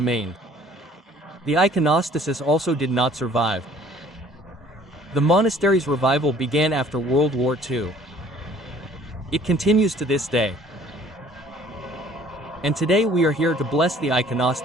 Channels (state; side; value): normal; both; correlation 0.55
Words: The iconostasis also did not survive. The monastery's revival began after World War II. It continues to this day. And today we are here to bless the